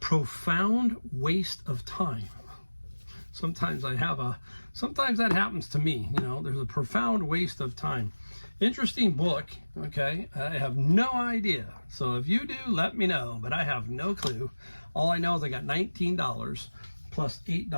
Profound Waste of Time. Sometimes that happens to me, you know, there's a profound waste of time. Interesting book, okay? I have no idea. So if you do, let me know, but I have no clue. All I know is I got $19. Plus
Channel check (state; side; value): inverted; both; correlation -1.00